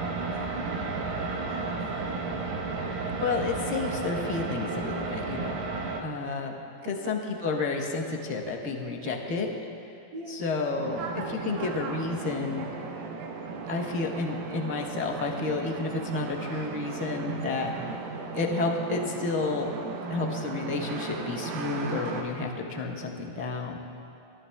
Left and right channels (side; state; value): left; late; 18 ms